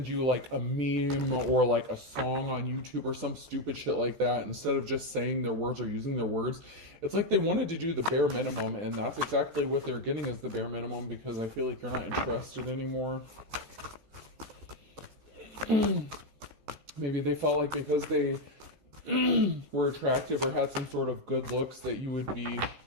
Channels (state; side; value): late; left; 14 ms